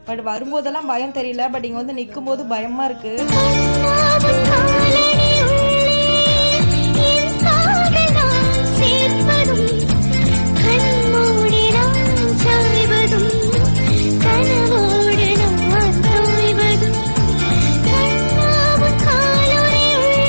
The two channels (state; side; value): inverted; both; correlation -1.00